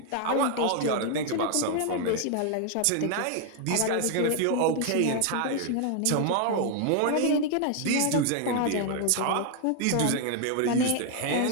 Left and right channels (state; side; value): different; both; correlation 0.00